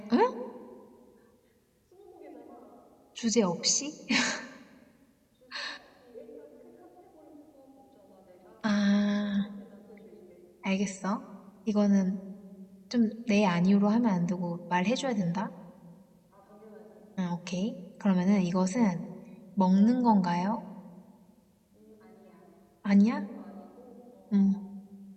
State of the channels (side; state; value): both; identical; correlation 1.00